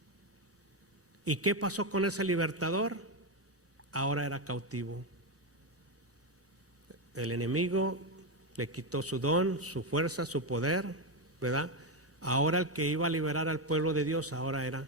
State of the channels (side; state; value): both; normal; correlation 0.09